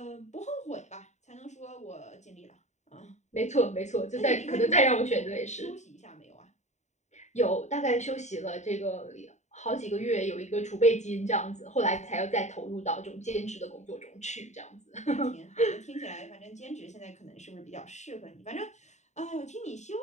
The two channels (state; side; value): late; right; 0.34 ms